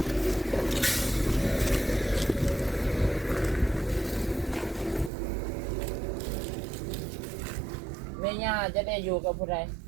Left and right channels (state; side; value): drops out; left; at 5.1 s